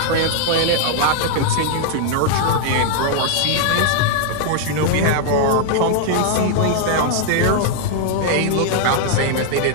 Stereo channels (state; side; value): different; both; correlation -0.01